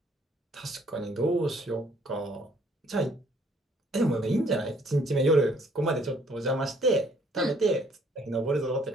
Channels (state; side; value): normal; both; correlation 0.63